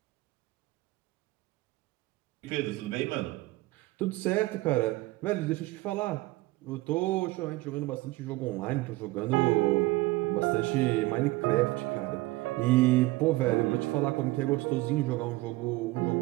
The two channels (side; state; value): left; quieter; 19.9 dB